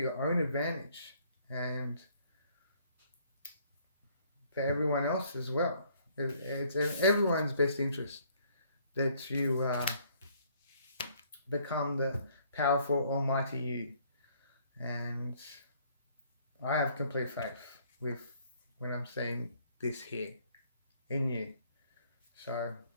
own advantage and for everyone else as well. It's in everyone's best interest that you become the powerful almighty you, and I have complete faith with when I'm saying this here in you. So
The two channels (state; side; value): inverted; both; correlation -0.63